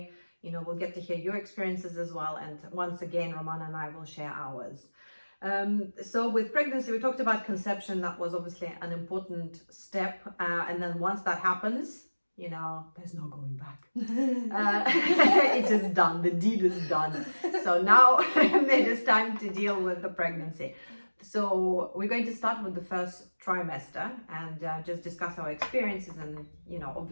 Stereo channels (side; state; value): both; inverted; correlation -1.00